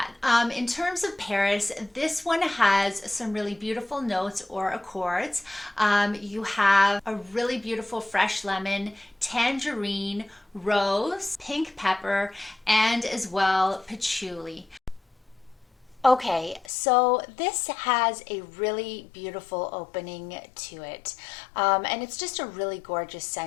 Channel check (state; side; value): drops out; right; at 16.7 s